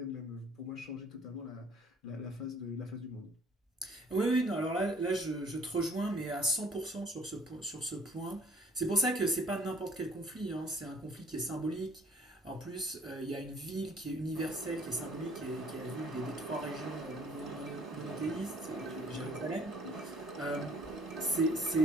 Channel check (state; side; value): normal; both; correlation 0.56